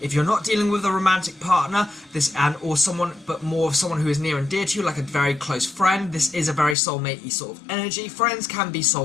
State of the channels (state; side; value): drops out; right; at 6.8 s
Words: If you're not dealing with a romantic partner, or someone, but more of someone who is near and dear to you, like a very close friend, this is a very soulmate-y sort of energy. Friends can be